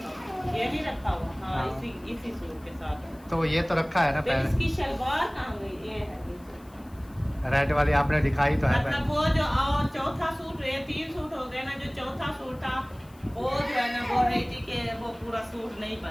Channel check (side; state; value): left; noise; hiss, 28 dB below the sound